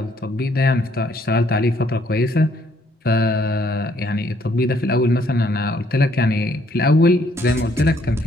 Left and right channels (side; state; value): both; normal; correlation 0.67